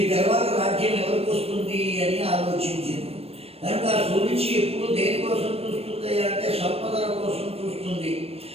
తర్వాత రాజ్యం ఎవరికి వస్తుంది అని ఆలోచించింది. కనుక ఆ సురుచి ఎప్పుడు దేనికోసం చూస్తుంది అంటే సంపదల కోసం చూస్తుంది,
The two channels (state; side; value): late; left; 0.29 ms